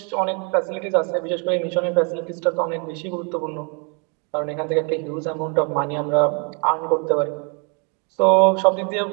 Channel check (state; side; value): quieter; left; 36.3 dB